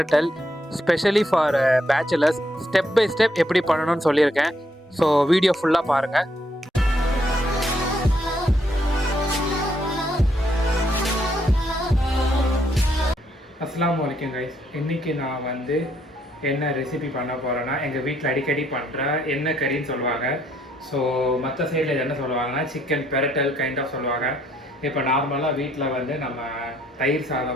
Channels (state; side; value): normal; both; correlation 0.72